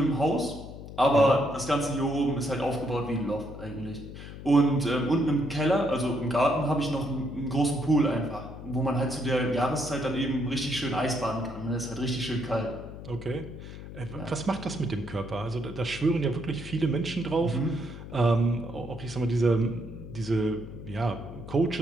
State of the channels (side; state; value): left; noise; hum, 12 dB below the sound